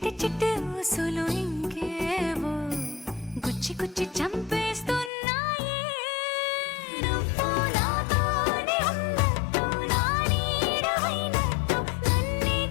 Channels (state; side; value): drops out; right; at 5.1 s